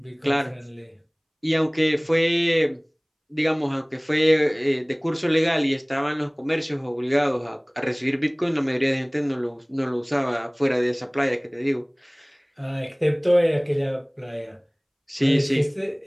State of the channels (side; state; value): both; identical; correlation 1.00